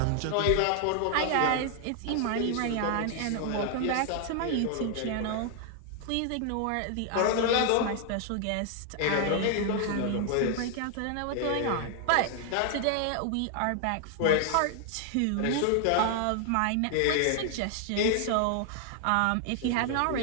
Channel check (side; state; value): both; different; correlation 0.00